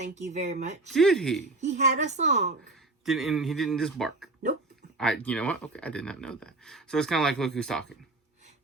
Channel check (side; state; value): left; quieter; 3.2 dB